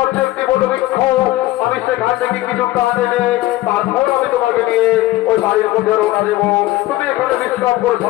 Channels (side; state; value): right; quieter; 16.9 dB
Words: একটি বটবৃক্ষ, আমি সেখান থেকে কিছু কাঠ এনে তারপর আমি তোমাকে নিয়ে ওই বাড়ির মধ্যে রওনা দেবো। তুমি এখানে বিশ্রাম করো